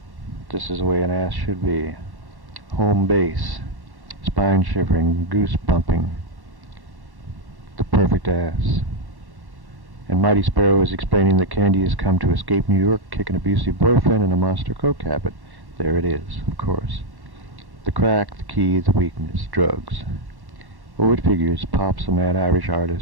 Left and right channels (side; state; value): left; late; 1.1 ms